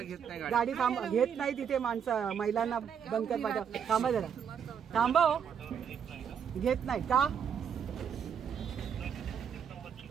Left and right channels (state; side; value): quieter; left; 7.6 dB